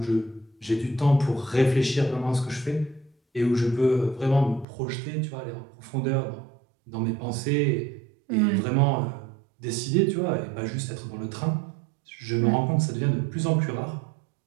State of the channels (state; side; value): drops out; left; at 4.7 s